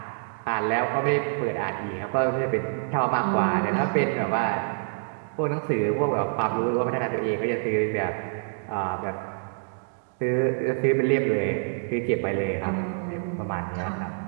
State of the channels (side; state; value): left; silent; digital silence